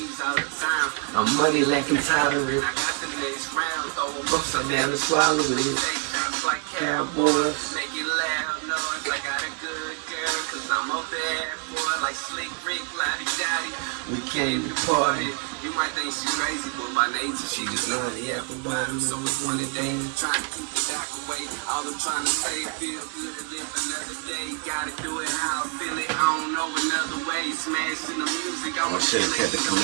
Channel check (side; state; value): left; quieter; 36.7 dB